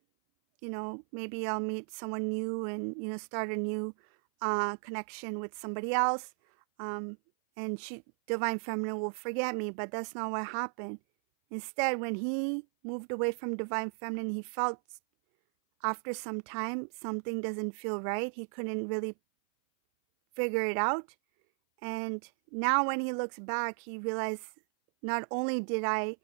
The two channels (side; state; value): left; silent; 55 dB below the other